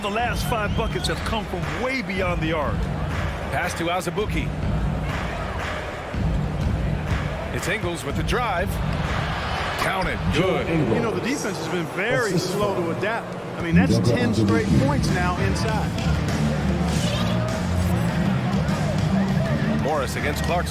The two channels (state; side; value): identical; both; correlation 1.00